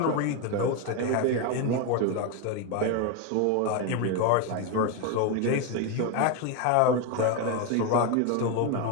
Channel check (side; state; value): both; different; correlation 0.02